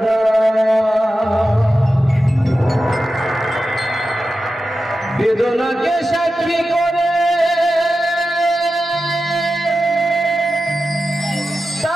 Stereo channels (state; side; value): normal; both; correlation 0.92